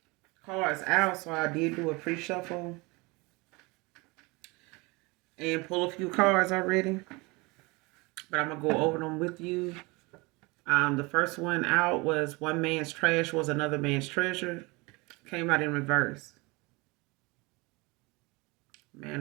cards out, so I did do a pre-shuffle and pull a few cards already. But I'm gonna go over them with you. The first one out was one man's trash was another man's treasure. Came out in reverse.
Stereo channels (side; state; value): left; quieter; 25.6 dB